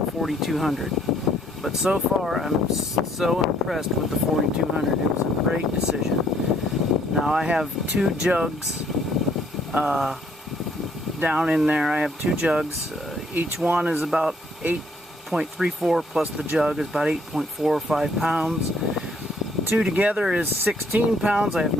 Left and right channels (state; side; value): normal; both; correlation 0.65